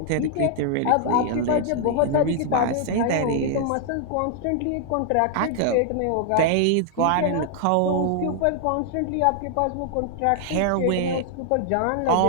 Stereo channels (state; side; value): different; both; correlation 0.00